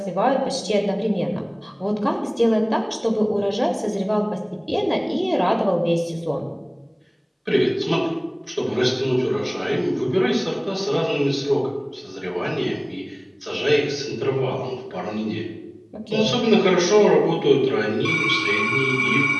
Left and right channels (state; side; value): identical; both; correlation 1.00